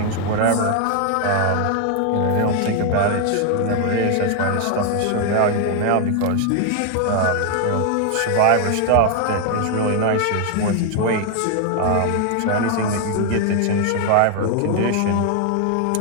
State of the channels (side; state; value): both; different; correlation 0.00